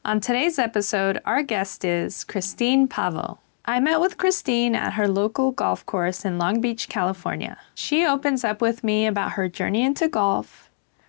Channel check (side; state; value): right; silent; digital silence